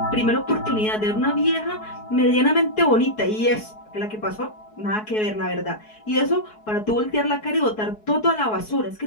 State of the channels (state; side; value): late; right; 4.7 ms